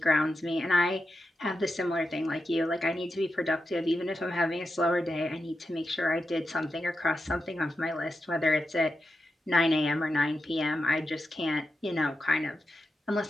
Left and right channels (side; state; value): both; normal; correlation 0.88